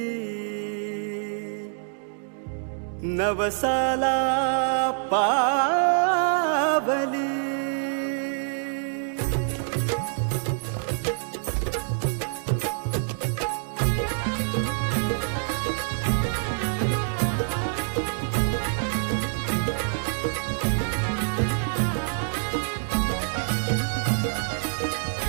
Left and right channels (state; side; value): silent; left; digital silence